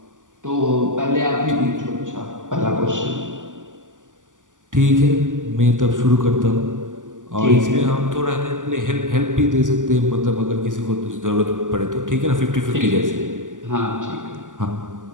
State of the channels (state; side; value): late; left; 0.87 ms